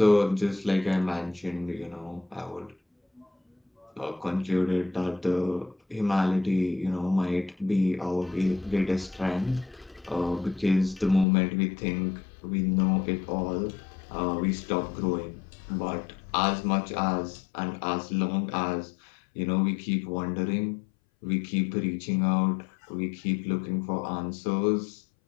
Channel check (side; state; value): right; drops out; at 11.2 s